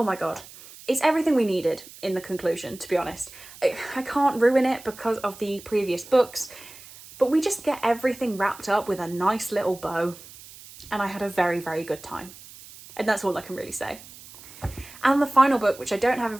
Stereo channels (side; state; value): right; noise; hiss, 18 dB below the sound